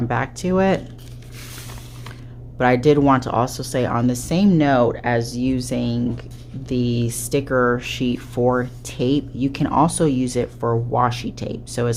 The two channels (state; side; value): identical; both; correlation 1.00